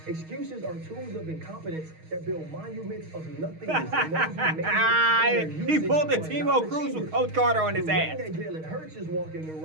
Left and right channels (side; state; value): left; late; 6.4 ms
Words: Excuses are tools of incompetence that build monuments of nothingness. And those who make it in their He usage pulled the are Timo not Cruz with achievers. Coach Carter on his The ring ass. that Jalen Hurts is walking